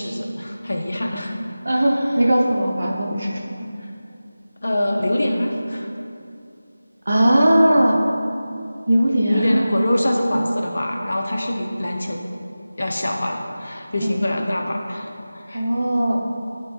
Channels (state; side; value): inverted; both; correlation -0.96